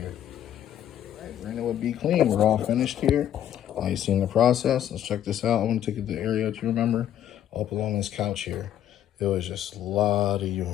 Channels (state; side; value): quieter; right; 10.9 dB